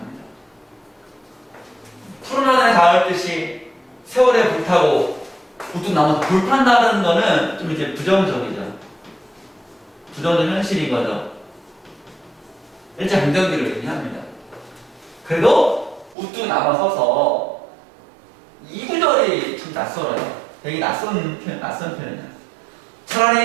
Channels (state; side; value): drops out; left; at 16.2 s